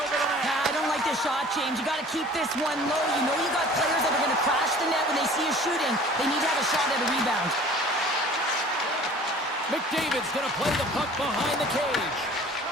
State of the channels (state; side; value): normal; both; correlation 0.47